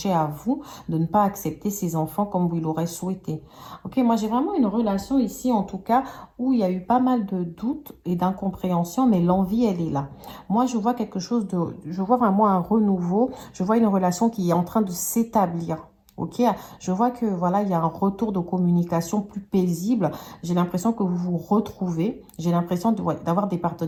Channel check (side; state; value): both; identical; correlation 1.00